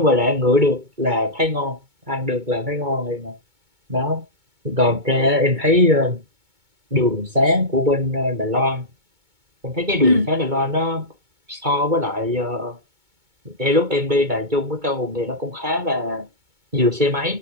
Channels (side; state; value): left; late; 2.2 ms